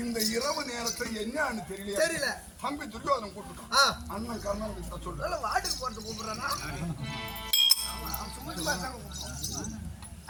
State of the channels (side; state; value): both; identical; correlation 1.00